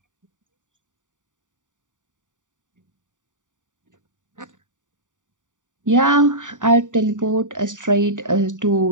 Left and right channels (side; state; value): left; late; 0.86 ms